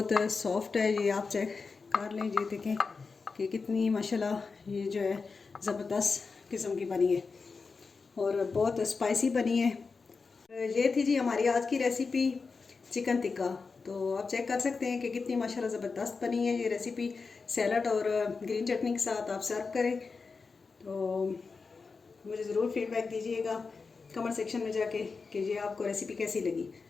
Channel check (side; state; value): right; quieter; 4.6 dB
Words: सॉफ्ट है। ये आप चेक कर लें, ये देखें कि कितनी माशाल्लाह ये जो है ज़बरदस्त किस्म की बनी है और बहुत स्पाइसी बनी है। ये थी जी हमारी आज की रेसिपी चिकन टिक्का। तो आप चेक कर सकते हैं कि कितनी माशाल्लाह ज़बरदस्त बनी है। ये रेसिपी सैलड और ग्रीन चटनी के साथ आप सर्व करें। तो मुझे ज़रूर फीडबैक दीजिएगा कमेंट सेक्शन में जाके कि ये आपको रेसिपी कैसी लगी।